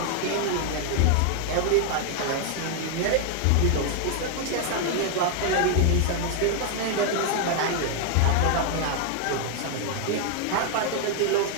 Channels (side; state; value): both; different; correlation 0.00